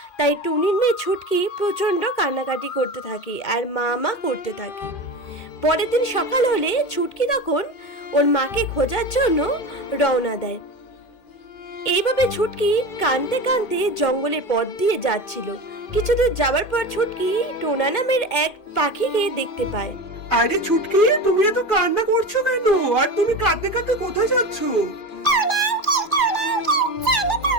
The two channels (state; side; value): late; right; 2.4 ms